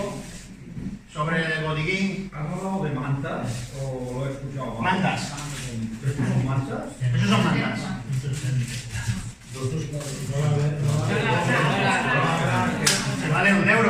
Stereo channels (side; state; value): both; identical; correlation 1.00